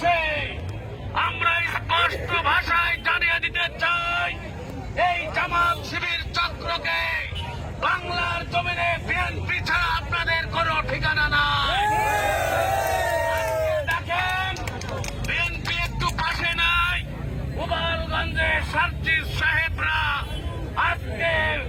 আমরা স্পষ্ট ভাষায় জানিয়ে দিতে চাই, এই জামাত শিবির চক্রকে বাংলার জমিনে বিএনপি ছাড়া আপনাদের কোনো ঠিকানা নাই। দেখেন বিএনপি একটু পাশে নাই, গোপালগঞ্জে সার্জিস সাহেবরা আজকে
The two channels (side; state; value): both; identical; correlation 1.00